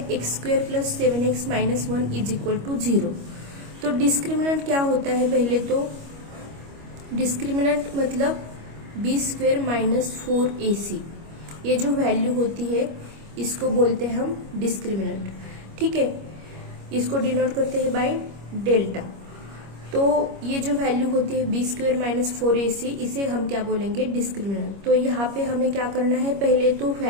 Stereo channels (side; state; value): left; late; 25 ms